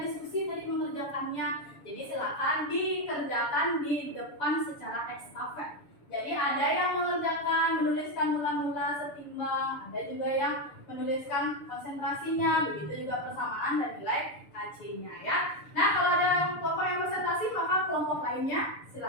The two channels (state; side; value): late; right; 7.0 ms